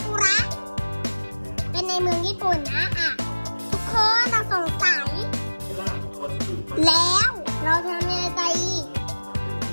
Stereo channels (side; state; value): both; inverted; correlation -1.00